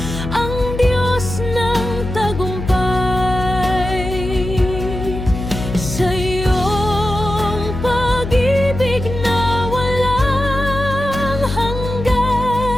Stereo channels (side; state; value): left; noise; hum, 6 dB below the sound